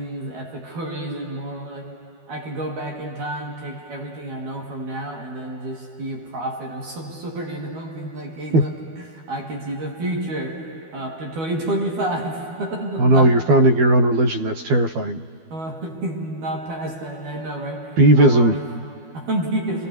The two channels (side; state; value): left; late; 12 ms